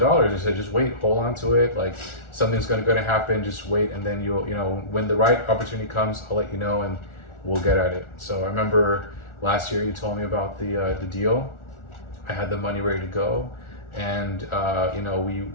I said, just wait, hold on to it. Something's going to happen. Just wait, and then you'll, when the right opportunity comes, I'll let you know, and we'll get at it. So I remember last year you told me about the deal. I had the money ready to go, and I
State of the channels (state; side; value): late; right; 1.4 ms